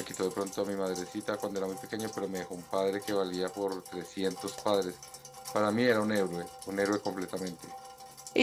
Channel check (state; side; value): identical; both; correlation 1.00